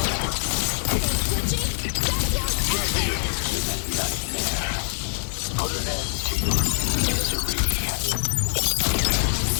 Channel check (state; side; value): silent; right; 62 dB below the other